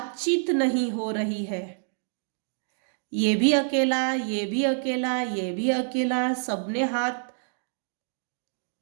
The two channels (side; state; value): left; silent; digital silence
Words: नहीं हो रही है। ये भी अकेला, ये भी अकेला, ये भी अकेला, सबने हाथ,